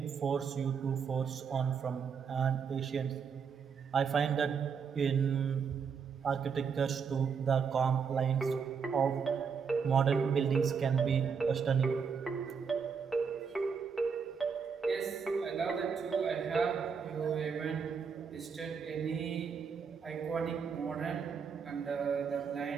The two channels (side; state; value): left; quieter; 6.2 dB